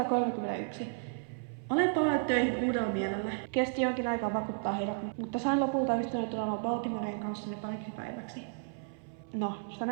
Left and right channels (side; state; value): left; silent; 56 dB below the other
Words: Olen palannut töihin uudella mielellä. Kesti jonkin aikaa vakuuttaa heidät, mutta sain lopulta ystäväni tulemaan Baltimoreen kanssani pariksi päiväksi. No,